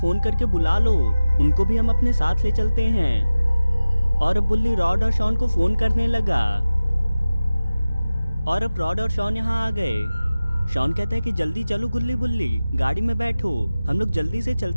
करके बुला लो, उनको भी हम अपने साथ ले चलते हैं। और अब बुल्ली रॉड और शॉन को फोन करने लगा और अब रॉड और शॉन यहाँ आ गए। शॉन कहता है कि जल्दी चलो गुल्ली बुल्ली, गाड़ी में बैठो, हम लोग जल्दी से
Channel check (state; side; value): inverted; both; correlation -0.97